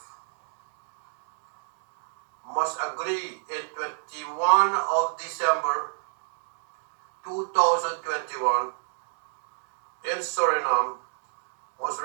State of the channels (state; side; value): silent; left; digital silence